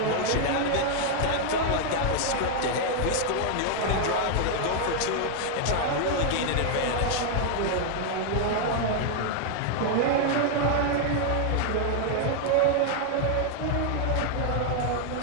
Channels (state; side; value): different; both; correlation 0.00